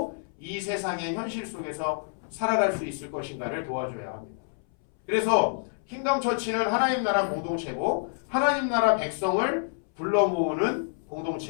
이 세상의 현실 속에서 살아갈 수 있을 것인가를 도와줘야 합니다. 그래서 킹덤 처치는 하나님 나라 공동체고 하나님 나라 백성을 불러 모으는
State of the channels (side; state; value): right; silent; 59 dB below the other